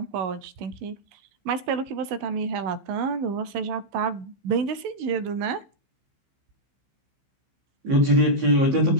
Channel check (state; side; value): late; left; 15 ms